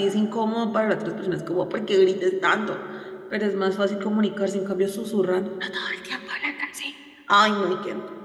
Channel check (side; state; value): both; identical; correlation 1.00